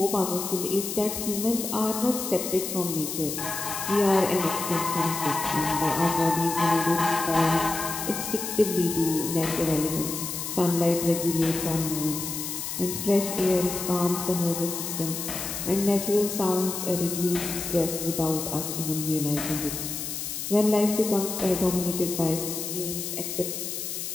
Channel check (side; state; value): left; noise; hiss, 5 dB below the sound